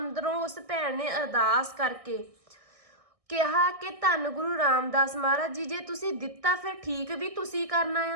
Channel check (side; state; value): left; late; 1.6 ms